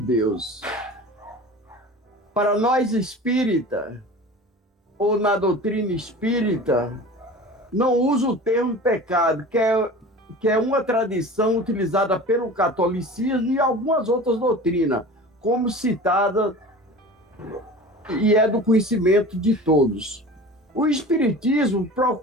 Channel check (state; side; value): normal; both; correlation 0.37